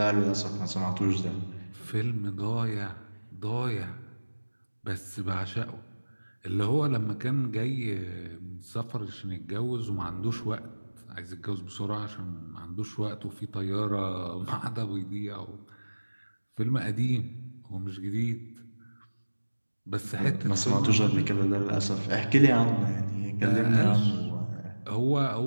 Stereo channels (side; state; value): both; inverted; correlation -1.00